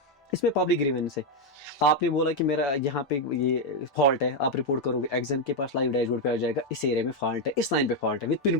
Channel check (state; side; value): normal; both; correlation 0.03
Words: इसमें पब्लिक ग्रीवेंस है, आपने बोला कि मेरा यहाँ पे ये फॉल्ट है, आप रिपोर्ट करोगे, एक्जन के पास लाइव डैशबोर्ड पे आ जाएगा इस एरिया में फॉल्ट है, इस लाइन पे फॉल्ट है विद पिन